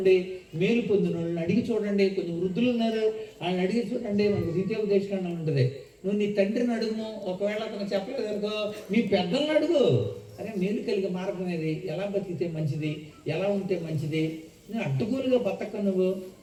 మేలు పొందిన వాళ్ళని అడిగి చూడండి. కొంచెం వృద్ధులు ఉన్నారు, వాళ్ళని అడిగి చూడండి. మనకు ద్వితీయోపదేశకాండం ఉంటుంది. నువ్వు నీ తండ్రిని అడుగు, ఒకవేళ అతను చెప్పలేదు అనుకో మీ పెద్దలను అడుగు. అరే మేలు కలిగే మార్గం ఏది, ఎలా బతికితే మంచిది, ఎలా ఉంటే మంచిది, నువ్వు అడ్డుగోలుగా బతక నువ్వు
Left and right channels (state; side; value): identical; both; correlation 1.00